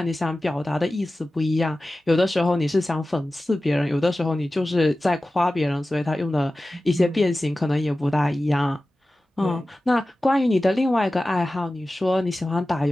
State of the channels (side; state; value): both; normal; correlation 0.95